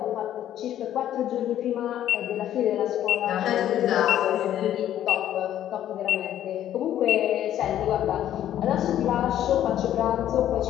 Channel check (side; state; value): right; quieter; 11.6 dB